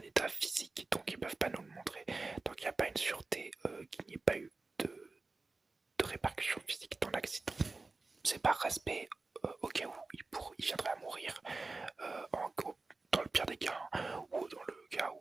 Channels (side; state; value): left; quieter; 3.6 dB